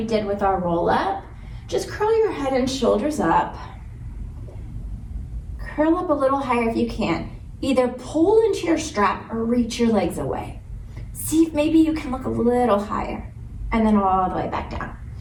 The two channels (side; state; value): both; identical; correlation 1.00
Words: did with our roll up. Just curl your head and shoulders up. Curl up a little higher if you can. Either pull into your strap or reach your legs away. See if maybe you can look a little higher and then all the way back down.